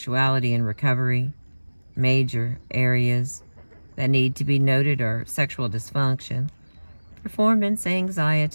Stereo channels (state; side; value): inverted; both; correlation -1.00